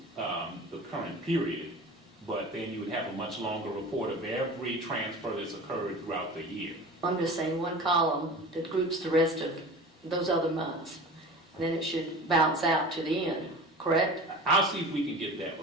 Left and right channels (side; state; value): both; normal; correlation 0.37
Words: the current period, but then you would have a much longer report of every transfer that's occurred throughout the year. I'm just saying one column that groups the rest of those other months. Then it should bounce out to the end, correct? I'll see if we can get that